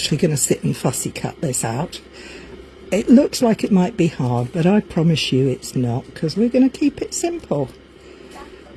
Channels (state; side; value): identical; both; correlation 1.00